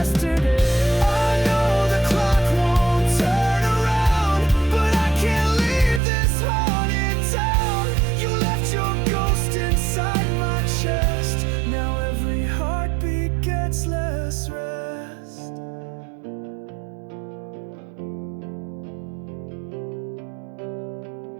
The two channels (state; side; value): drops out; left; at 6.0 s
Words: I know the clock won't turn around, but I can't leave this haunted town. You left your ghost inside my chest. Now every heartbeat gets less rest.